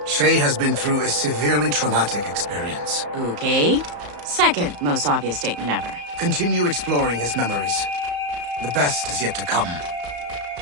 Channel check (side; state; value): left; late; 34 ms